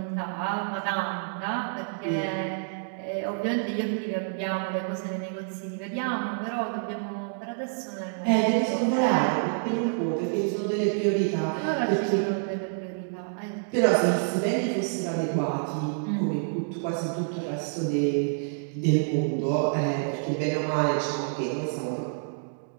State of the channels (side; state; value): left; silent; digital silence